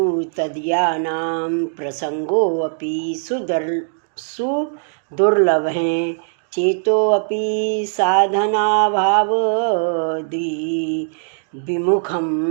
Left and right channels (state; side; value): silent; left; digital silence